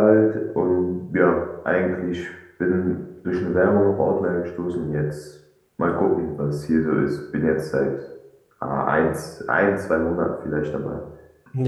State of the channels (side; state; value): both; identical; correlation 1.00